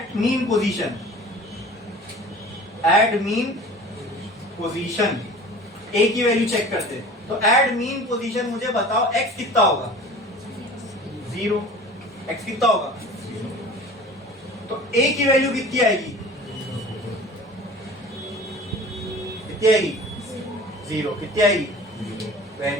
mean position, at mean position a की वैल्यू चेक करते हैं। तो एट मीन पोजीशन मुझे बताओ एक्स कितना होगा? 0। एक्स कितना होगा? तो ए की वैल्यू कितनी आएगी? कितनी आएगी? 0। कितनी आएगी?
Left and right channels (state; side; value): normal; both; correlation 0.42